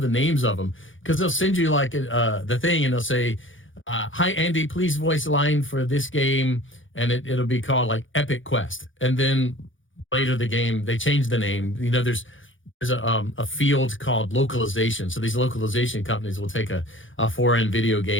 names of them because they'll send you like the thing and they'll say, hi, Andy, please voice line for this game. And it'll be called like Epic Quest. And then later the game, they change the name. There's a field called localization. So these localization companies will take a foreign video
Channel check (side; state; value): right; late; 0.57 ms